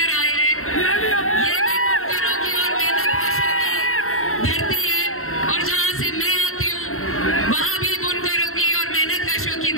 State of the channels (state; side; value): late; right; 0.62 ms